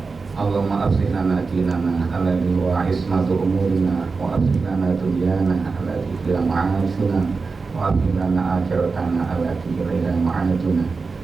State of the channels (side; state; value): left; quieter; 4.4 dB